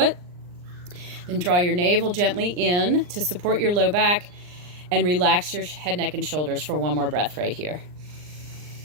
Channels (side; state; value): left; late; 39 ms